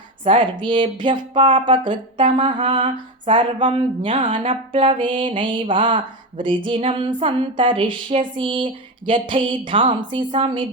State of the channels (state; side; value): normal; both; correlation 0.17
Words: सर्वेभ्यः पापकृत्तमः सर्वं ज्ञानप्लवेनैव वृजिनं सन्तरिष्यसि यथैधांसि